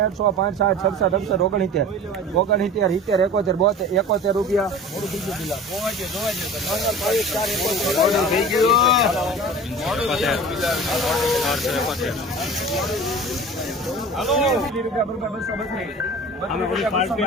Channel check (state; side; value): normal; both; correlation 0.38